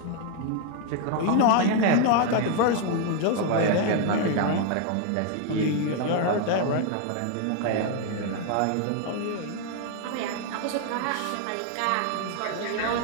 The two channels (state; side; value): different; both; correlation 0.00